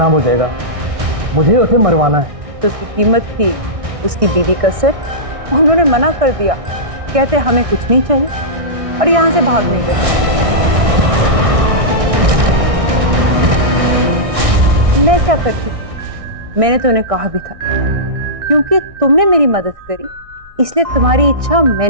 हो जाएगा। मुझे उसे मरवाना है। तो उसकी कीमत थी उसकी बीवी का सिर। उन्होंने मना कर दिया, कहते हमें कुछ नहीं चाहिए, और यहाँ से भाग नहीं गए। मैं क्या करती? मैंने तो उन्हें कहा भी था, क्योंकि तुमने मेरी मदद करी इसलिए तुम्हारी इच्छा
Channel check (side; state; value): left; late; 1.6 ms